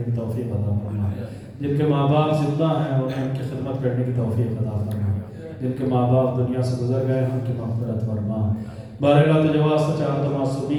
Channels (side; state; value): both; identical; correlation 1.00